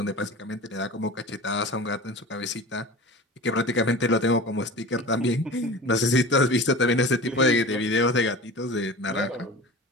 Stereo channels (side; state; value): both; normal; correlation 0.36